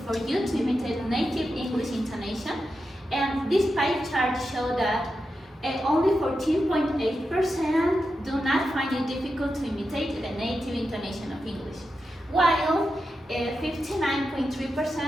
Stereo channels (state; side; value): normal; both; correlation 0.89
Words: for you to imitate native English intonation? And this pie chart shows that only 14.8% do not find it difficult to imitate the native intonation of English, while